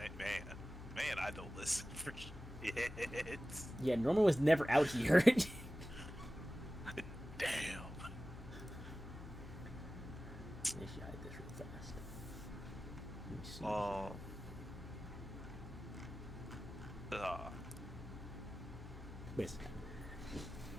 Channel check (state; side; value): normal; both; correlation 0.95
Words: I don't listen for shit. Yeah, Norman was never out here. Damn. I should hide this real fast. Let me see. Wait a second.